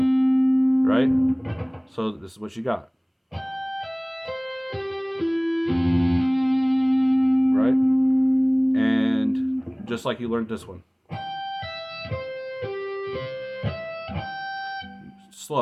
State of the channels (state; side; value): identical; both; correlation 1.00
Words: Right? So this is what you got. Right? And just like you learned this one.